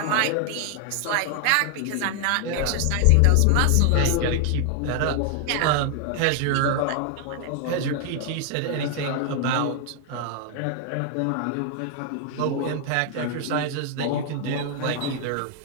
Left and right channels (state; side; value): different; both; correlation 0.00